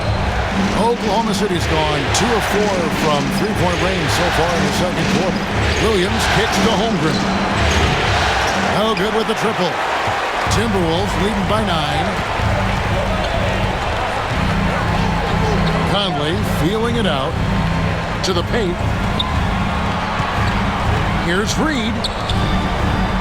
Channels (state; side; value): identical; both; correlation 1.00